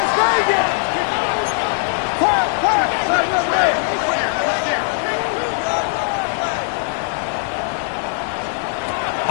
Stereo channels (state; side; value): silent; right; digital silence